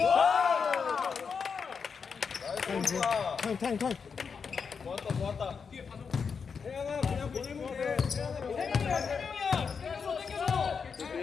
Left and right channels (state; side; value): quieter; right; 5.9 dB